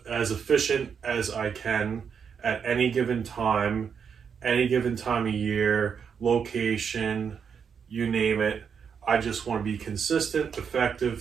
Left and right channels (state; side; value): quieter; left; 6.8 dB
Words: efficient as I can at any given time of year, location, you name it. I just want to be consistent,